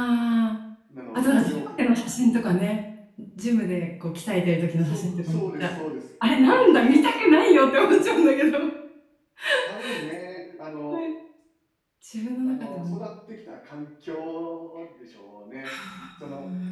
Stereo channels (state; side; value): identical; both; correlation 1.00